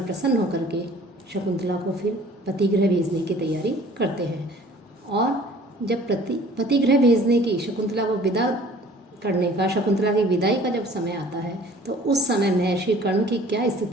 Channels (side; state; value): both; normal; correlation 0.51